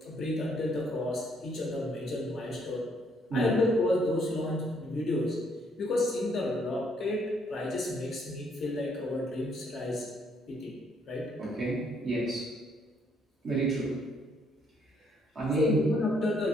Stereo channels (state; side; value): normal; both; correlation 0.69